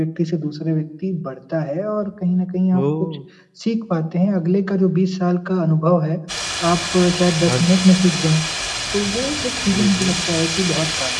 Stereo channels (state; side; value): identical; both; correlation 1.00